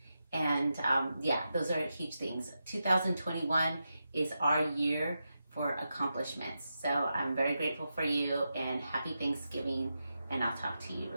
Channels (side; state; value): both; inverted; correlation -0.88